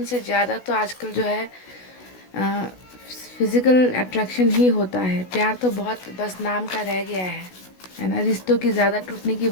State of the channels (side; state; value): right; late; 16 ms